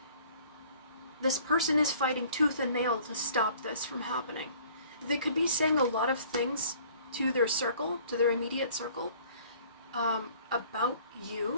this person is fighting tooth and nail to stop this from happening. They could be saying a lot of things to their circle, to their immediate circle, about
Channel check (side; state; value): both; inverted; correlation -0.54